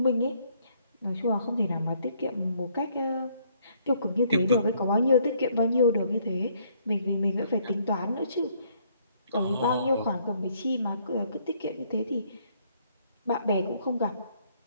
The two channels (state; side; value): inverted; both; correlation -0.67